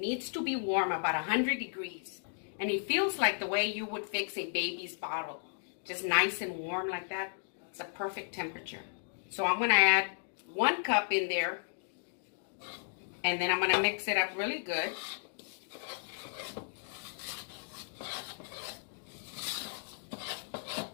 to be warm, about 100 degrees. And it feels like the way you would fix a baby's bottle. Just nice and warm like that. It's a perfect temperature. So I'm going to add 1 cup in there. And then I'm going to mix it up really good.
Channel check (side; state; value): right; silent; digital silence